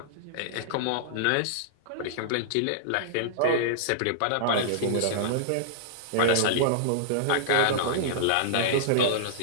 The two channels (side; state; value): both; different; correlation -0.02